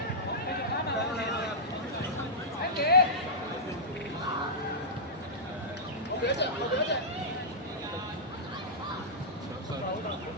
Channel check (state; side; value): normal; both; correlation -0.13